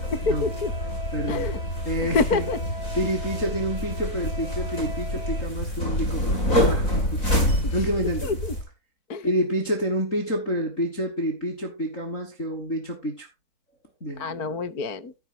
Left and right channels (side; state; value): right; late; 4.0 ms